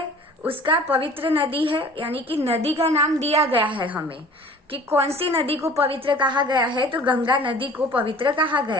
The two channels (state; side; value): normal; both; correlation 0.47